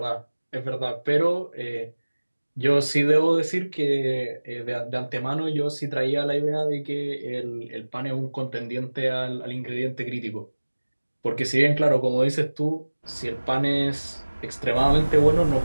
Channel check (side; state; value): both; inverted; correlation -1.00